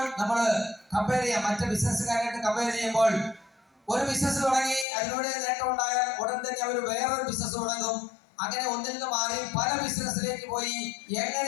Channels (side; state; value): right; drops out; at 4.9 s